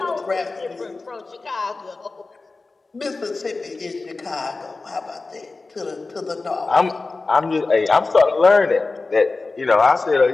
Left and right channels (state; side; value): quieter; right; 3.7 dB